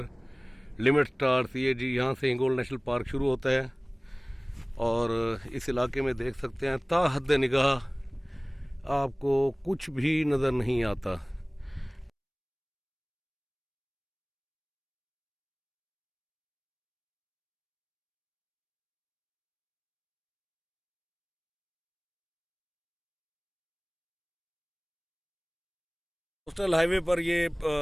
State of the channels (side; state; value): both; identical; correlation 1.00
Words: limit stars. ये जी यहाँ से हिंगोल नेशनल पार्क शुरू होता है और इस इलाके में देख सकते हैं ता हद निगाह आपको कुछ भी नज़र नहीं आता। कोस्टल हाईवे पर ये